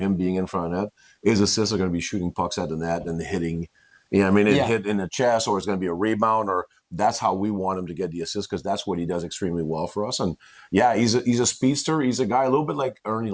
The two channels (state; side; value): identical; both; correlation 1.00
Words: being in front of net. His assists are going to be shooting pucks at the net and hitting. Hit in the chest, or it's going to be a rebound, or that's how we want him to get the assist, because that's what he does extremely well for us. And he's a speedster. He's a guy a little bit like Ernie